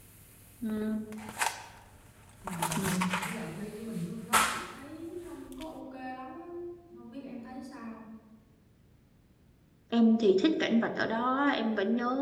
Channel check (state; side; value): identical; both; correlation 1.00